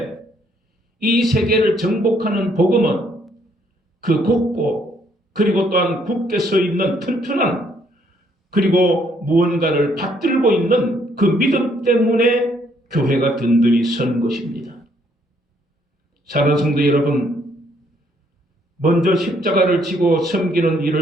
이 세계를 정복하는 복음은 그 곱고 그리고 또한 굳게 서 있는 튼튼한 그리고 무언가를 받들고 있는 그 믿음 때문에 교회가 든든히 선 것입니다. 사랑하는 성도 여러분, 먼저 십자가를 지고 섬기는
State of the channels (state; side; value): normal; both; correlation 0.68